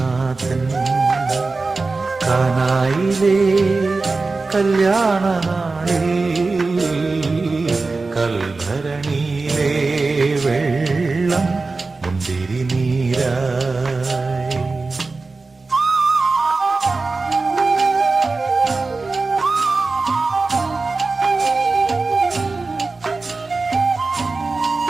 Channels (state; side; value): quieter; left; 3.8 dB